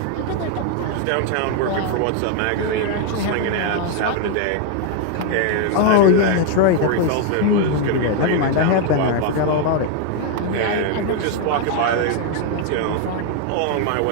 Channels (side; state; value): both; different; correlation 0.00